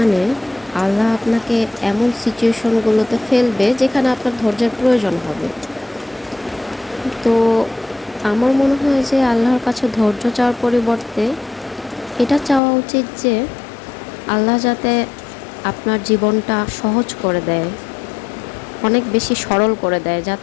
আল্লাহ আপনাকে এমন সিচুয়েশনগুলোতে ফেলবে যেখানে আপনার ধৈর্যের প্রয়োজন হবে। তো আমার মনে হয় যে আল্লাহর কাছে ধৈর্য চাওয়ার পরিবর্তে এটা চাওয়া উচিত যে আল্লাহ যাতে আপনার জীবনটা সহজ করে দেয়, অনেক বেশি সরল করে দেয়,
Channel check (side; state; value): right; drops out; at 12.6 s